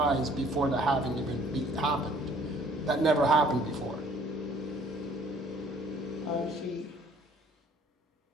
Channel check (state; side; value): normal; both; correlation 0.57